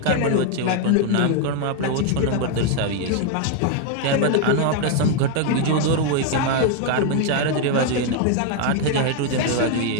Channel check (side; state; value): both; different; correlation 0.00